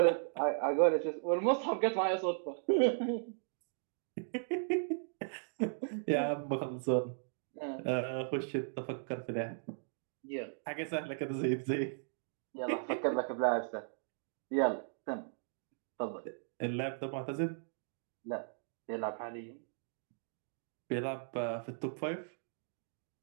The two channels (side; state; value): left; silent; digital silence